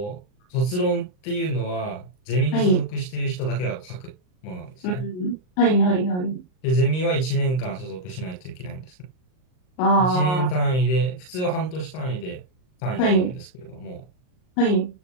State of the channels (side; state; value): right; late; 39 ms